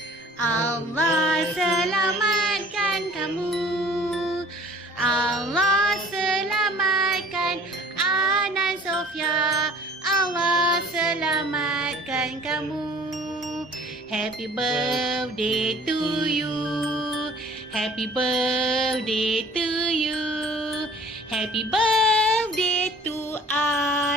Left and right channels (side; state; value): both; normal; correlation 0.50